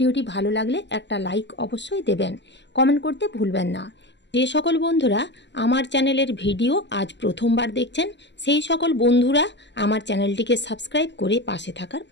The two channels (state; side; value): late; right; 0.51 ms